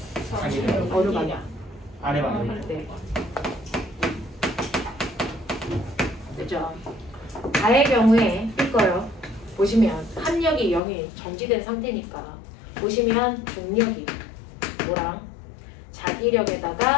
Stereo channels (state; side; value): drops out; right; at 10.8 s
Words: 자기력. 어느 방향? 아래 방향. 네. 됐죠? 가의 경우에 이거요. 보시면 합력이 0이 정지된 상태니까 보시면 중력이 뭐랑